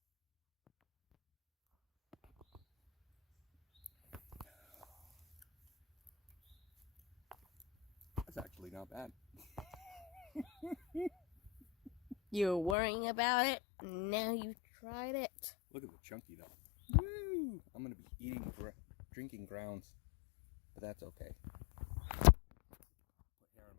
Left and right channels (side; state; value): right; drops out; at 12.8 s